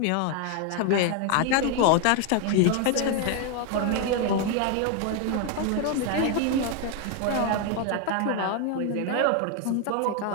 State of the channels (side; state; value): both; different; correlation 0.01